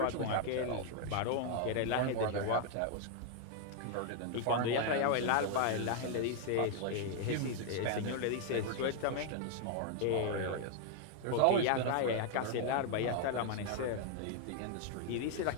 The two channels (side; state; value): both; different; correlation 0.00